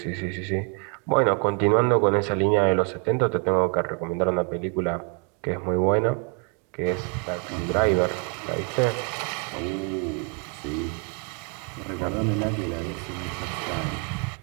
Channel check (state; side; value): quieter; left; 33.7 dB